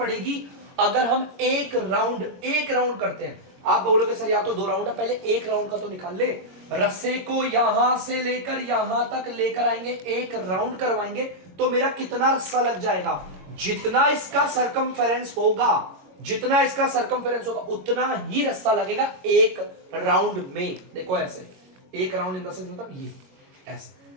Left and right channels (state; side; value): late; left; 22 ms